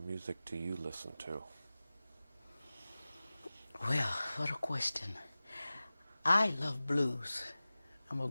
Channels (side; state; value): both; inverted; correlation -0.97